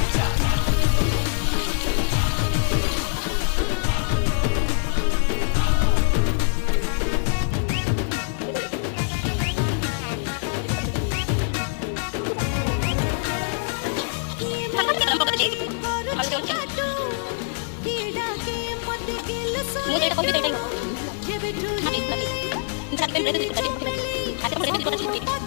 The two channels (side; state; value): right; silent; 63 dB below the other